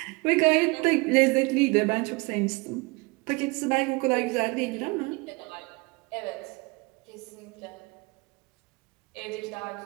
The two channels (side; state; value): left; quieter; 26.5 dB